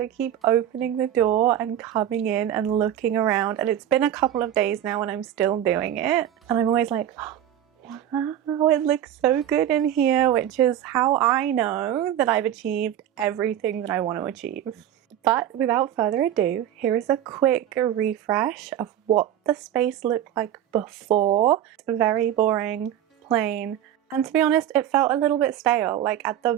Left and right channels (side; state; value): left; quieter; 11.2 dB